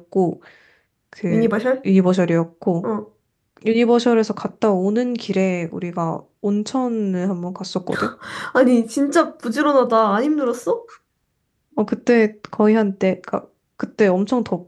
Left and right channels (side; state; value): both; identical; correlation 1.00